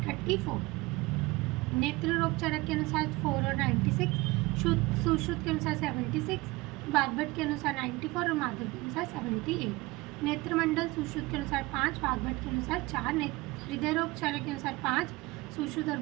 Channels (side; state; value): left; quieter; 22.0 dB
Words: 34। नेत्र रोग चरक के अनुसार 4 और 96, सुश्रुत के अनुसार 76, वाग्भट के अनुसार 94 और माधव के अनुसार 78। नेत्रमंडल सुश्रुत के अनुसार 5, वाग्भट के अनुसार 4। हृदय रोग चरक के अनुसार 5, सुश्रुत और